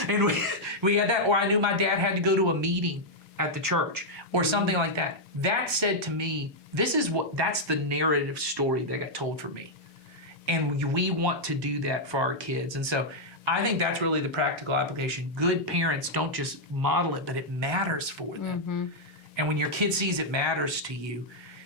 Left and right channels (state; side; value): normal; both; correlation -0.04